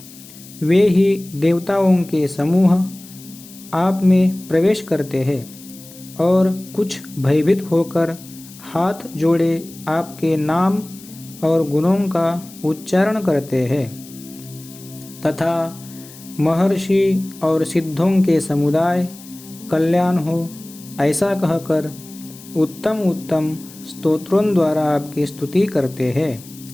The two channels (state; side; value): noise; left; hiss, 19 dB below the sound